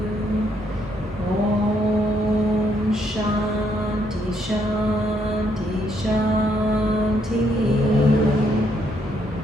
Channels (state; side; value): normal; both; correlation 0.73